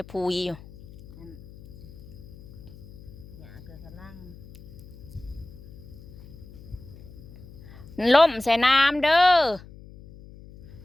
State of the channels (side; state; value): left; noise; hum, 18 dB below the sound